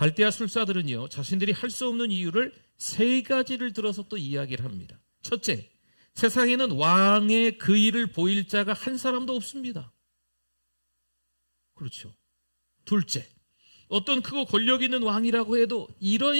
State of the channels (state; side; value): inverted; both; correlation -1.00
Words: 술사들은요, 자신들이 할 수 없는 이유를 세 가지를 들어서 또 이야기를 합니다. 첫째, 세상에는 왕의 그 일을 보일 자가 한 사람도 없습니다. 그렇죠. 둘째, 어떤 크고 권력 있는 왕이라고 해도